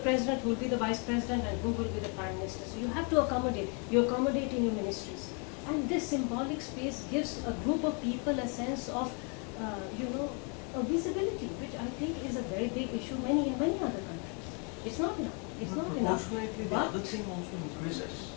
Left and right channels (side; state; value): right; quieter; 36.6 dB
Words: who will be the vice president, and who will be the prime minister. So you have to accommodate. You accommodate in your ministries. And this symbolic space gives a group of people a sense of, a visibility, which I think is a very big issue in many other countries. It's not enough. It's not enough. Proportionately, the other thing also increases.